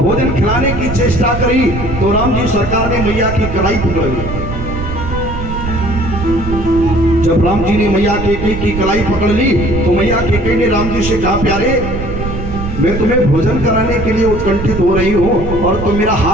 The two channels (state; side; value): noise; right; rumble, 6 dB below the sound